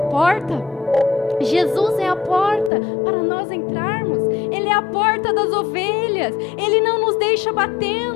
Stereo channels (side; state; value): right; drops out; at 2.7 s